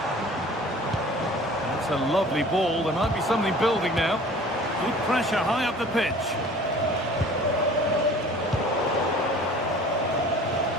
That's a lovely ball. There might be something building now. Good pressure high up the pitch.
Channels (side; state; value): both; normal; correlation 0.46